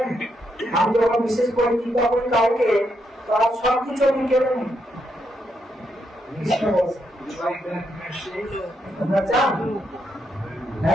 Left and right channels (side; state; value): both; normal; correlation 0.79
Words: আমি যখন বিশেষ করে টিকা করি কাউকে তার সব কিছু আমি কেড়ে নিই। কৃষ্ণ বলছে You like that mercy? তোমরা চান?